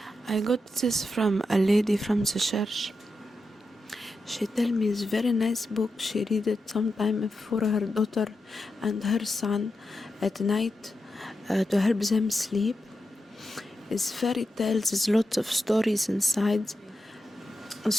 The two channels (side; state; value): both; normal; correlation 0.88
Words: I got this from a lady from the church. She tell me it's very nice book. She read it sometime for her daughter and her son at night to help them sleep. It's fairy tales. There's lots of stories inside.